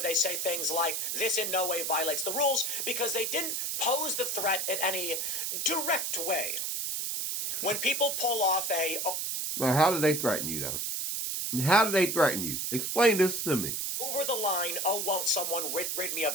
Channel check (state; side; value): noise; right; hiss, 1 dB below the sound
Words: say things like, this in no way violates the rules, because they didn't pose the threat in any direct way. When people pull off Well, how did they threaten you, though? How did they threaten you? Explain this to me. over the line, oh, won't someone rid me of